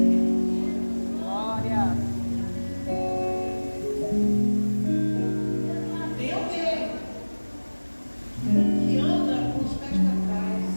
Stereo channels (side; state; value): both; inverted; correlation -1.00